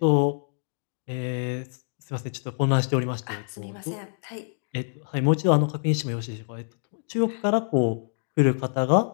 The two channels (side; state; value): right; silent; digital silence